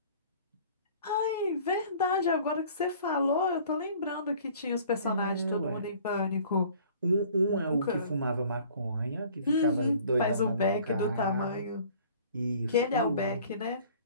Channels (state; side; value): inverted; both; correlation -0.51